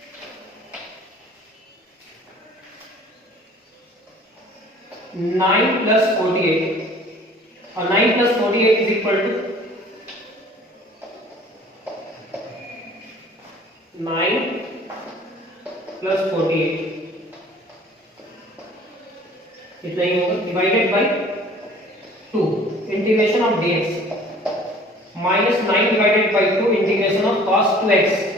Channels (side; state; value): both; normal; correlation 0.50